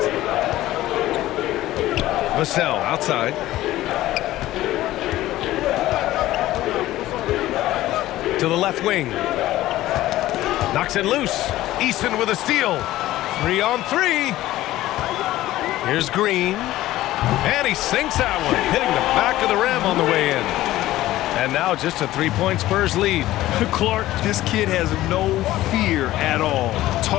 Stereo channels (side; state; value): right; quieter; 15.5 dB